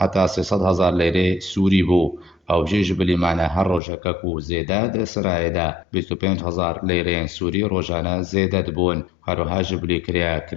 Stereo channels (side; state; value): right; drops out; at 3.8 s